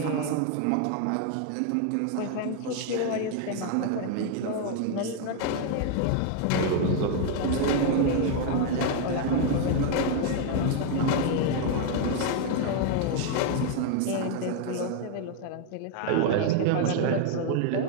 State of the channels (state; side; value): different; both; correlation 0.00